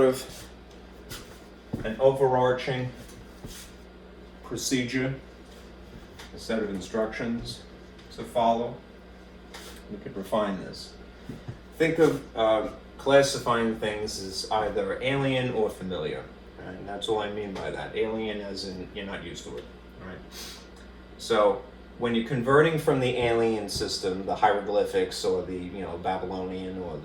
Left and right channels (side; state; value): both; identical; correlation 1.00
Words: an overarching procedure, a set of instructions to follow. We could refine this. Think of classifying things as either alien or familiar, right? And that's all I mean by that. Alien as in you're not used to it, right? So when you're converting from the alien system, the hieroglyphics or the Babylonian or